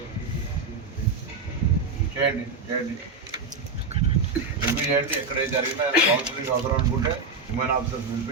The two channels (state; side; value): quieter; left; 4.0 dB